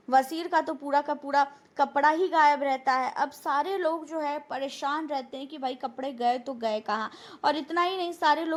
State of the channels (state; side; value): identical; both; correlation 1.00